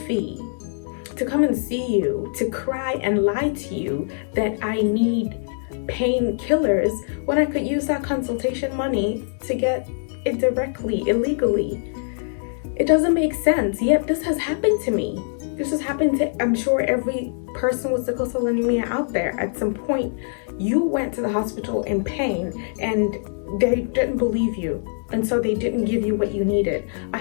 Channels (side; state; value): right; silent; digital silence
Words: to come and see you, to cry and lie to you that I need painkillers when I could use that consultation money to get it directly, illegally? It doesn't make sense. Yet this has happened to me. This has happened to, I'm sure, every person with sickle cell anemia out there. At some point, you went to the hospital in pain and they didn't believe you. And so they didn't give you what you needed. I